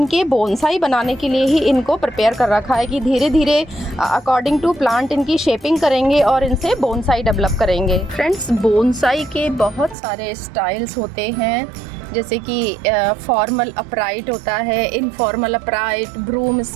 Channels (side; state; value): left; drops out; at 10.0 s